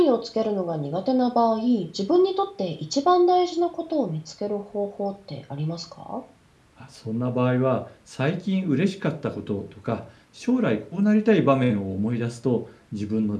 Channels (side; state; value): both; identical; correlation 1.00